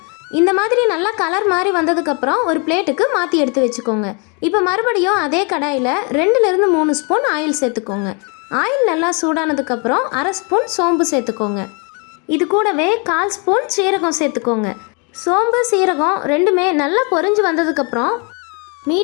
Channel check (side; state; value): right; quieter; 34.4 dB